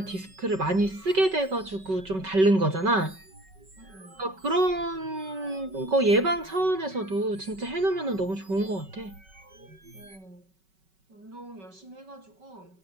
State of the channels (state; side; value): late; left; 5.3 ms